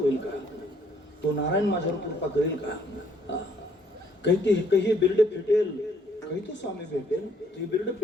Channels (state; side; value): normal; both; correlation 0.65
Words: का, तो नारायण माझ्यावर कृपा करेल का, काही बिर्ड फिटेल, काही तो स्वामी भेटेल, ते बिर्ड